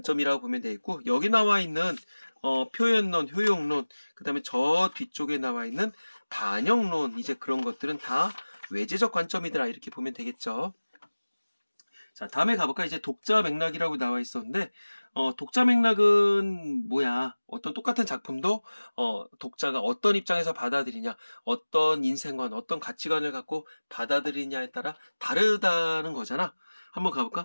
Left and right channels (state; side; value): inverted; both; correlation -1.00